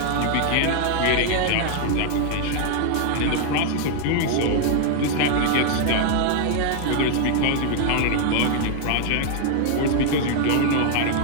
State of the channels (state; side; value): different; both; correlation 0.00